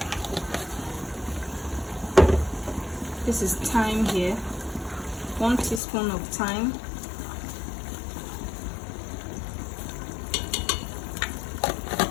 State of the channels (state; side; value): drops out; right; at 5.8 s